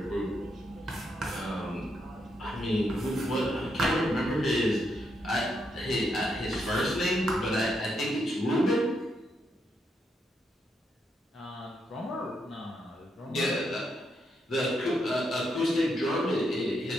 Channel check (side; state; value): both; normal; correlation 0.79